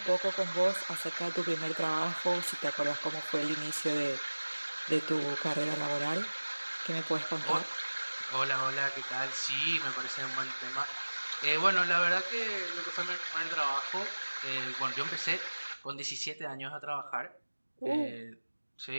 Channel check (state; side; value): inverted; both; correlation -1.00